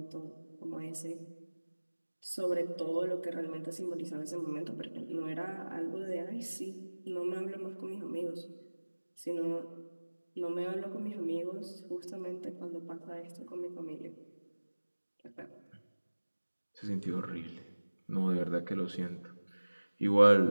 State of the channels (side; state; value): both; inverted; correlation -1.00